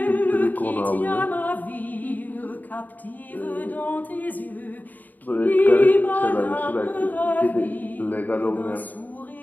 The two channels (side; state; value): right; late; 0.084 ms